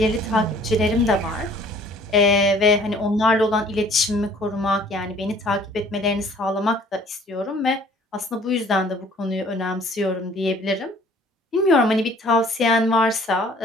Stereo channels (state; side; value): normal; both; correlation 0.54